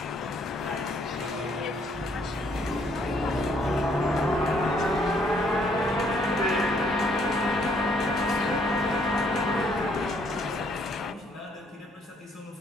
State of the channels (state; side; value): normal; both; correlation 0.67